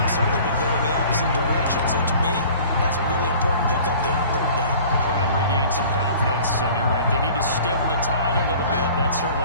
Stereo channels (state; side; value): inverted; both; correlation -0.47